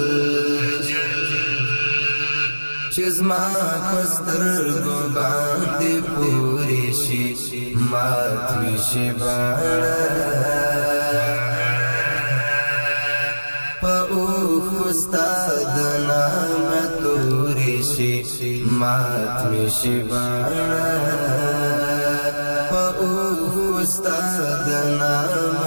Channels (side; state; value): both; inverted; correlation -1.00